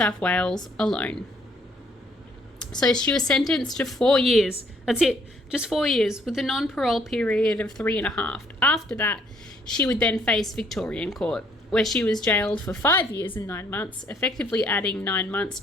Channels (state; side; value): normal; both; correlation 0.65